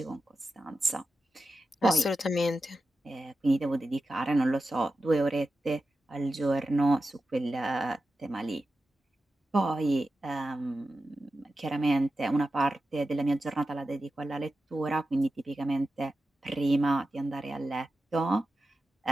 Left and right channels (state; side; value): normal; both; correlation 0.92